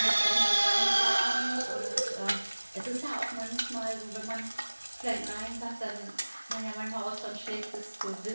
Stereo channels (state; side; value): inverted; both; correlation -1.00